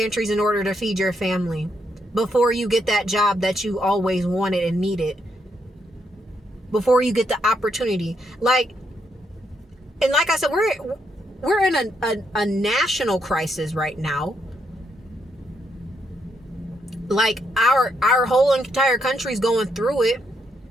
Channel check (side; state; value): both; normal; correlation 0.77